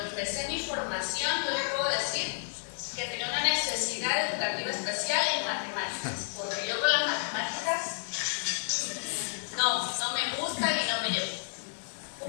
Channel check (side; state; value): right; silent; digital silence